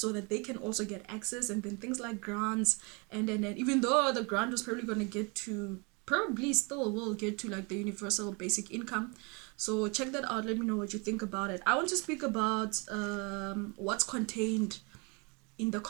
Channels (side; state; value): left; quieter; 30.7 dB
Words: that they can also get access. And then things like grants, and then even though the grant was probably going to get to, probably still will get to, like, the universal basic income. So check that out, let me know what you think about it. I want to speak about what's contained in the